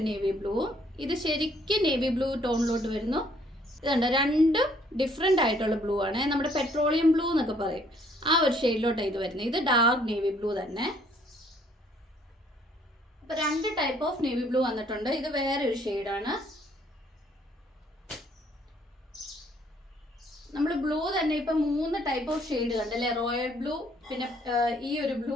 നേവി ബ്ലൂവും ഇത് ശരിക്കും നേവി ബ്ലൂ ടോണിലോട്ട് വരുന്നു. ഇതുണ്ടോ, രണ്ടും ഡിഫറെൻ്റ് ആയിട്ടുള്ള ബ്ലൂ ആണ്. നമ്മുടെ പെട്രോളിയം ബ്ലൂ എന്നൊക്കെ പറയും, ആ ഒരു ഷെയ്ഡിലോട്ടാണ് ഇത് വരുന്നത്. ഇത് ഡാർക്ക് നേവി ബ്ലൂ തന്നെ. അപ്പോൾ 2 ടൈപ്പ് ഓഫ് നേവി ബ്ലൂ വന്നിട്ടുണ്ട്. ഇത് വേറെ ഒരു ഷെയ്ഡാണ്. നമ്മൾ ബ്ലൂ തന്നെ ഇപ്പം 3 ടൈപ്പ് ഓഫ് ഷെയ്ഡ് കണ്ടല്ലേ. റോയൽ ബ്ലൂ, പിന്നെ ഈ ഒരു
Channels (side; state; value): both; normal; correlation 0.63